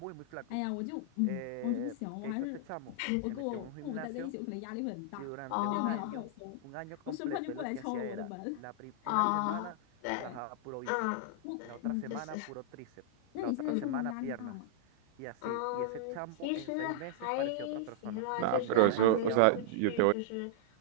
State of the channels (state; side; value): different; both; correlation -0.01